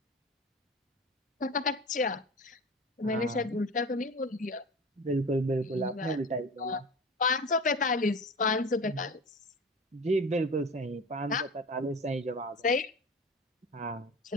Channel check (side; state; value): both; normal; correlation 0.33